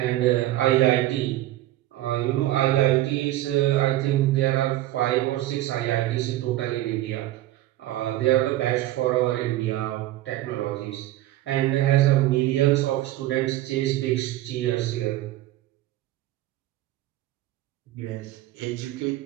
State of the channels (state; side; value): quieter; left; 15.1 dB